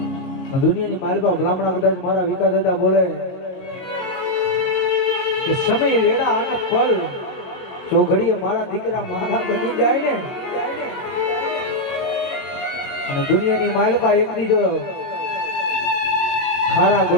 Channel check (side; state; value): right; late; 22 ms